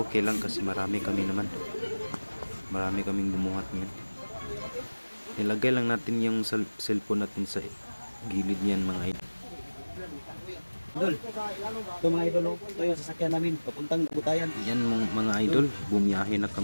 okay lang kasi marami kami naman. Marami kaming bumuhat ngayon. Nilagay lang natin yung cellphone natin sa gilid niyan mga idol. Idol, ito mga idol, ito yung sasakyan namin, papuntang Agutayan. Yan mga idol, bumiyahe na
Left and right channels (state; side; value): inverted; both; correlation -1.00